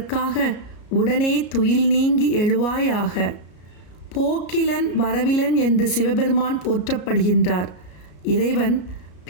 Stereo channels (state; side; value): late; right; 33 ms